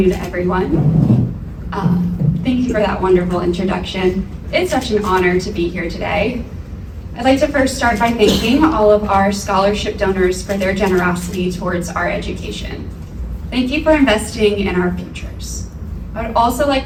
everyone. Thank you for that wonderful introduction. It's such an honor to be here today. I'd like to first start by thanking all of our scholarship donors for their generosity towards our education. Thank you for investing in our futures. I would also like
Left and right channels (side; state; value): both; identical; correlation 1.00